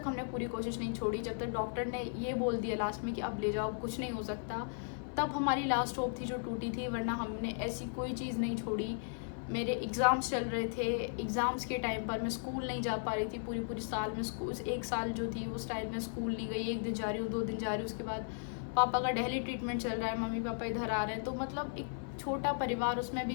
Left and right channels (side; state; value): right; silent; 54 dB below the other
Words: हमने पूरी कोशिश नहीं छोड़ी। जब तक डॉक्टर ने ये बोल दिया लास्ट में कि अब ले जाओ, कुछ नहीं हो सकता, तब हमारी लास्ट होप थी जो टूटी थी, वरना हमने ऐसी कोई चीज़ नहीं छोड़ी। मेरे एग्ज़ाम्स चल रहे थे, एग्ज़ाम्स के टाइम पर मैं स्कूल नहीं जा पा रही थी, पूरी साल में स्कूल, एक साल जो थी उस टाइम में स्कूल नहीं गई, एक दिन जा रही हूँ, 2 दिन जा रही हूँ, उसके बाद पापा का दिल्ली ट्रीटमेंट चल रहा है, मम्मी पापा इधर आ रहे हैं, तो मतलब एक छोटा परिवार, उसमें भी